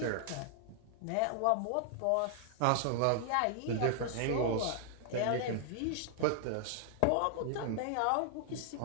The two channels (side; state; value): both; different; correlation 0.00